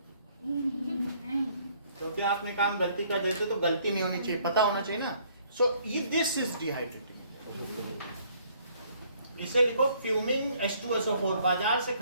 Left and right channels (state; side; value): inverted; both; correlation -0.63